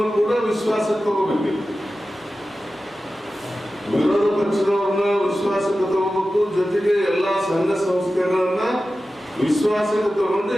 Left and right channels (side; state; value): both; normal; correlation 0.94